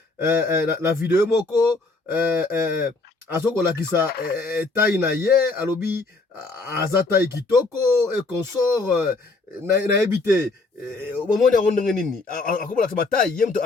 la vidéo moko azoko kisa taille na ye alobi aza taille kitoko et consort na ebité omoni yango ndenge nini akobola ba taille ye mto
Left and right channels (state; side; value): quieter; right; 3.4 dB